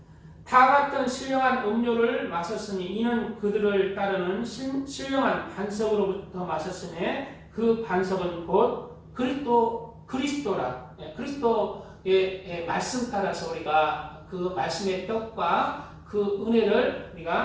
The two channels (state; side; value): identical; both; correlation 1.00